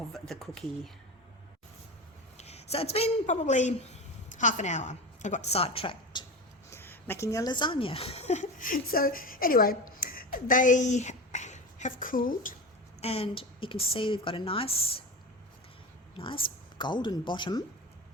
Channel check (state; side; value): normal; both; correlation 0.26